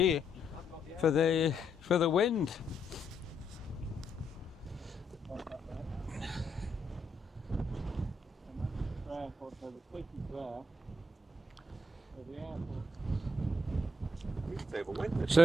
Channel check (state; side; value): normal; both; correlation 0.77